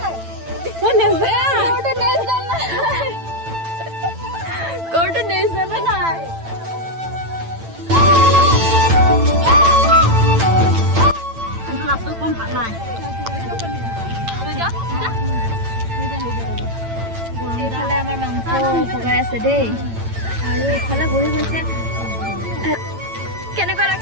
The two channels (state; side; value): late; left; 8.9 ms